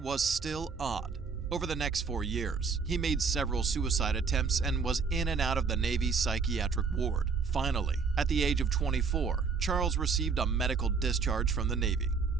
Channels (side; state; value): left; quieter; 5.2 dB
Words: still odd. Over the next 4 years, he made several suicide attempts and was in and out of the Navy psychiatric ward. Finally, at the age of 24, Charles received a medical discharge from the Navy.